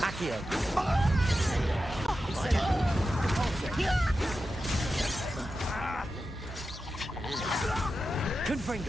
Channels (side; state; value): both; normal; correlation 0.91